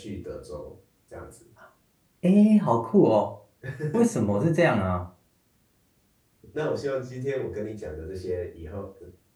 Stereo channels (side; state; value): both; identical; correlation 1.00